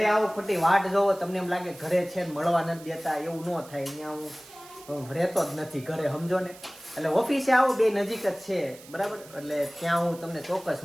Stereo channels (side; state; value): right; noise; hiss, 20 dB below the sound